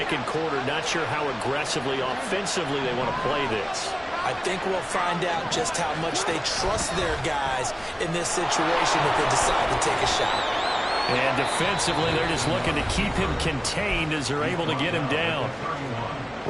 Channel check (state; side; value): identical; both; correlation 1.00